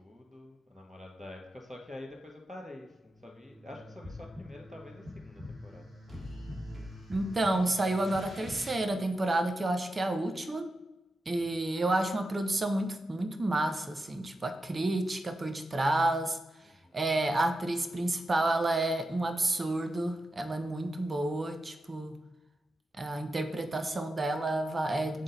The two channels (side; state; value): both; normal; correlation 0.89